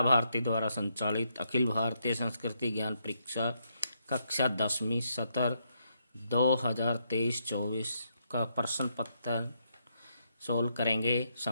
भारती द्वारा संचालित अखिल भारतीय संस्कृति ज्ञान परीक्षा कक्षा 10वीं सत्र 2023-24 का प्रश्न पत्र सोल्व करेंगे।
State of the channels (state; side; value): inverted; both; correlation -0.77